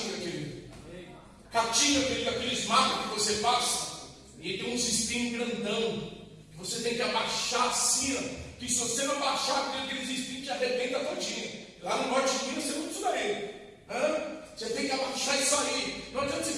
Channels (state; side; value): identical; both; correlation 1.00